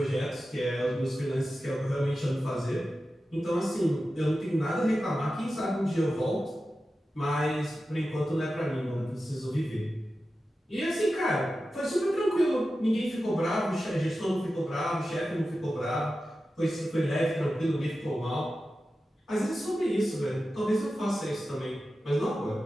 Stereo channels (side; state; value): both; normal; correlation 0.93